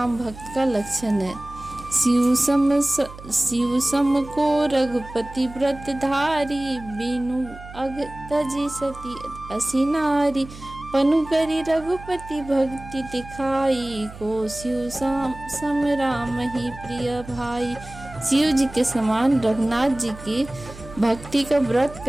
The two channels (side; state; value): right; noise; hum, 16 dB below the sound